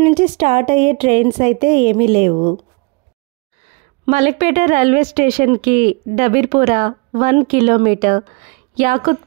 నుంచి స్టార్ట్ అయ్యే ట్రైన్స్ అయితే ఏమీ లేవు. మలక్పేట రైల్వే స్టేషన్కి Dabirpura 1 kilometre,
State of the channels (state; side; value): quieter; left; 29.0 dB